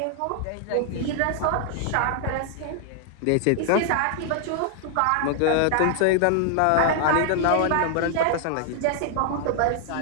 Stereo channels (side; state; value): both; different; correlation 0.00